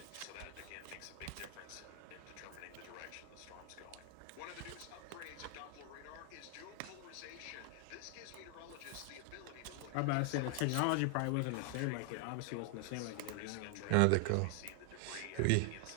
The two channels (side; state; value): both; different; correlation 0.00